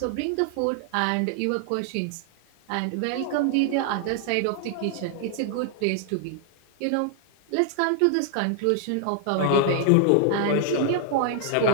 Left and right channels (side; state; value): both; different; correlation 0.00